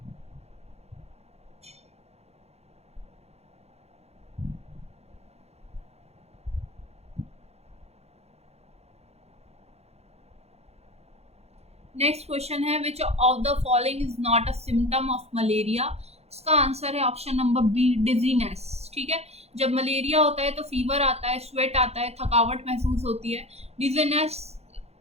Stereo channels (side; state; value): left; late; 0.31 ms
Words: Next question है, which of the following is not a symptom of malaria? इसका आंसर है ऑप्शन नंबर बी, डिजीनेस। ठीक है, जब मलेरिया होता है तो फीवर आता है, स्वेट आता है, थकावट महसूस होती है। डिजीनेस